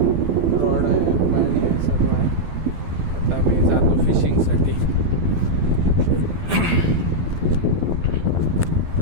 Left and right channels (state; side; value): late; left; 12 ms